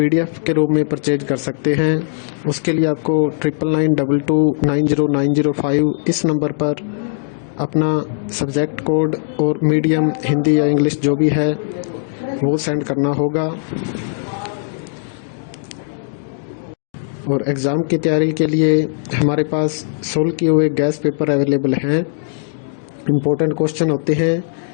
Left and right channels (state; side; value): silent; right; digital silence